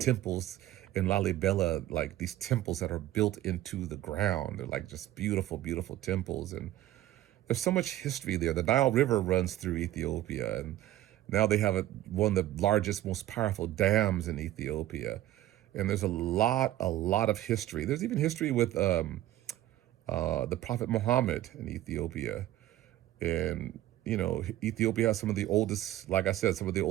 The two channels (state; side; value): quieter; left; 14.3 dB